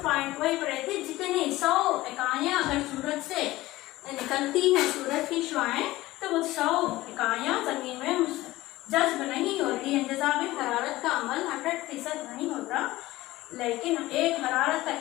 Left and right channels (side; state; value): right; quieter; 17.7 dB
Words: पॉइंट वही पढ़े थे, जितनी 100 इकाइयां अगर सूरज से निकलती हैं, सूरज की शुआएं, तो वो 100 इकाइयां जमीन में जज्ब नहीं होती है। इंतजाम हरारत का अमल 100% नहीं होता, लेकिन एक हरारत का